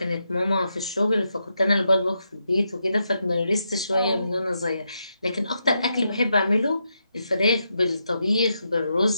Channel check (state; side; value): inverted; both; correlation -0.83